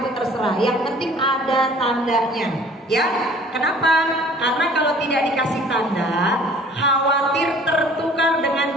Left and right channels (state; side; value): normal; both; correlation 0.51